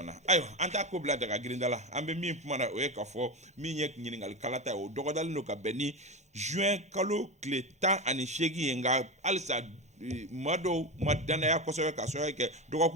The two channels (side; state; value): both; normal; correlation 0.19